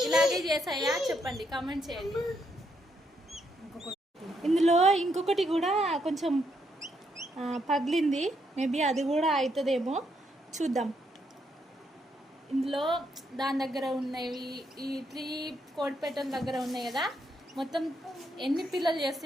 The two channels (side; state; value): both; normal; correlation 0.77